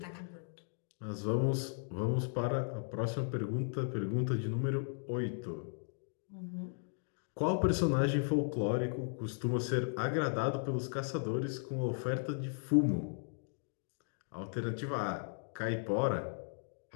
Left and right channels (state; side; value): silent; right; digital silence